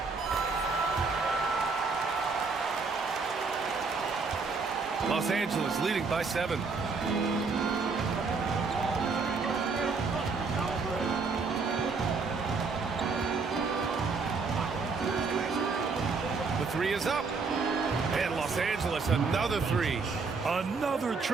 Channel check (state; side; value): quieter; left; 4.5 dB